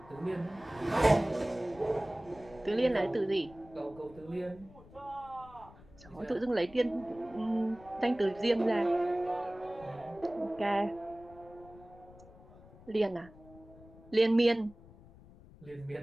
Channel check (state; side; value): noise; left; rumble, 22 dB below the sound